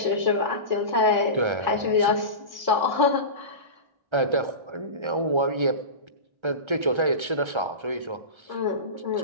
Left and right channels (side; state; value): left; late; 1.3 ms